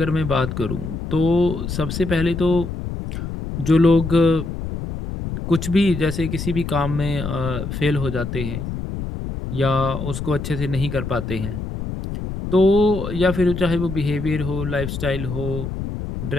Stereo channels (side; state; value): left; noise; rumble, 6 dB below the sound